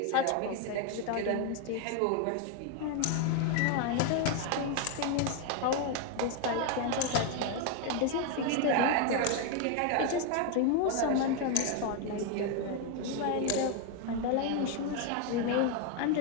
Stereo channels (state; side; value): different; both; correlation 0.01